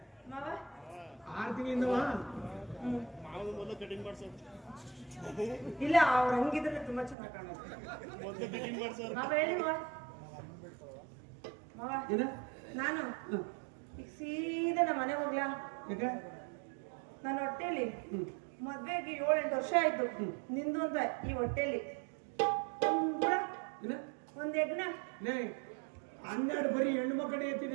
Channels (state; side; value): drops out; left; at 7.2 s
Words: ಮಾವ ಆರು ತಿಂಗಳಿಂದವಾ ಇಲ್ಲ ಅವ್ರು ಹಂಗಿದ್ರೆ ತುಂಬಾ ಚೆನ್ನಾಗಿ ಕಾಣುತ್ತೆ ಮಾವ ಹೇಳಿ ಮಾವ ಏನ ನಾನು ಈಗ ಸೀದಾ ನಮ್ಮ ಮನೆಗೆ ಹೋಗ್ಲಾ ಯಾಕೆ ನನ್ನ ಹೊಟ್ಟೆಲಿ ಮದ್ವೆಗೆ 7-8 ವರ್ಷ ಆಯ್ತು ನಿಂದು ಅಂತ ಈ ಹೊಟ್ಟೆಲಿ ಏನ ಒಂದ್ ಯಜ್ಞ ಲೇ 12 ಬರೀ ಹೆಣ್ಣು ಮಕ್ಕಳೇ